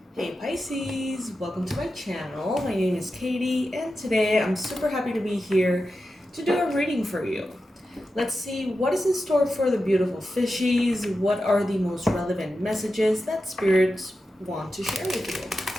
Hey Pisces, welcome to my channel. My name is Katie and today I'm super happy to be here to do a reading for you. Let's see what is in store for the beautiful fishies. What are the most relevant messages that spirits want to share with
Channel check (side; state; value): both; normal; correlation 0.91